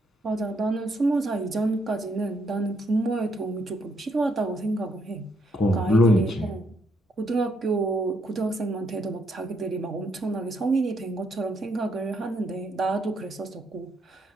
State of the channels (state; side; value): normal; both; correlation 0.74